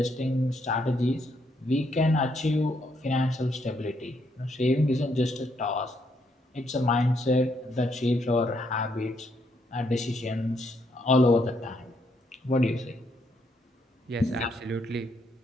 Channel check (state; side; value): normal; both; correlation 0.74